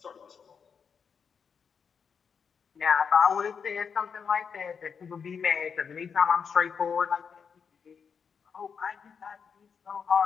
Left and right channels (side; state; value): right; quieter; 6.4 dB